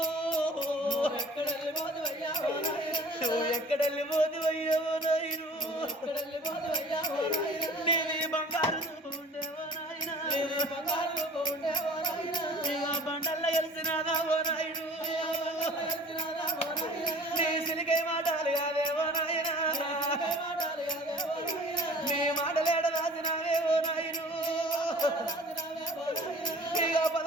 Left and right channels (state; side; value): normal; both; correlation 0.45